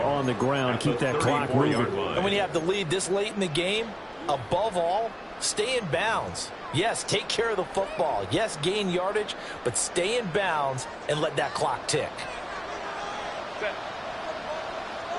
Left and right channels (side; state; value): both; identical; correlation 1.00